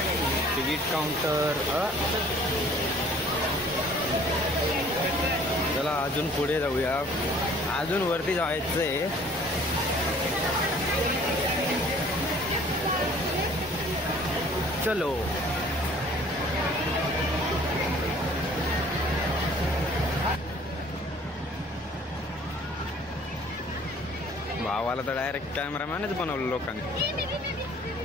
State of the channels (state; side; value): normal; both; correlation 0.54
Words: Ticket counter. चला अजून पुढे जाऊया. अजून वरती जायचंय. चलो. भावाला तर डायरेक्ट कॅमेरामॅनच बनवलं लोकांनी.